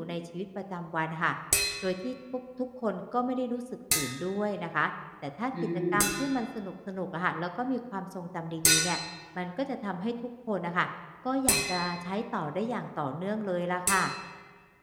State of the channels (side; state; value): both; identical; correlation 1.00